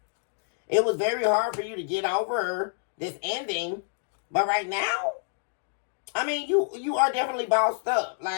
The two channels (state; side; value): silent; right; digital silence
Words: it was very hard for you to get over this ending. But right now, I mean, you are definitely bossed up.